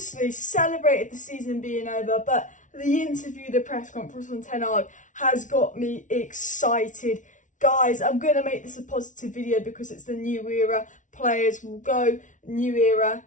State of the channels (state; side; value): late; right; 0.37 ms